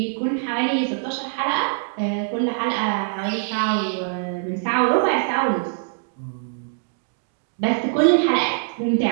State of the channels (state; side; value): silent; left; digital silence